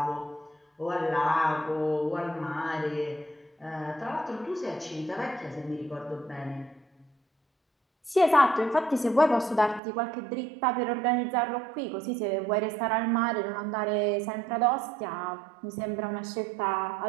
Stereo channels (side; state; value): left; drops out; at 9.8 s